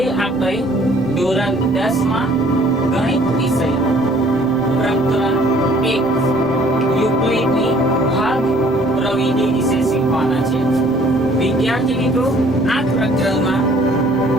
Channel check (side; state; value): right; noise; rumble, 20 dB below the sound